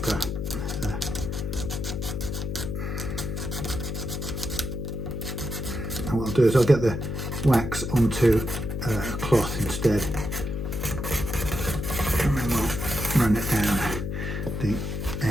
And what I'll do is I'll get the wax onto a cloth instead, and then we'll run it down. the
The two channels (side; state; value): left; noise; hum, 4 dB below the sound